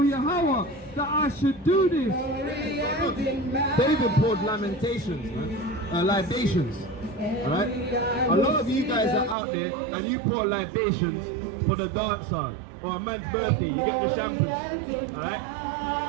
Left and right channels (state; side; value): drops out; left; at 9.3 s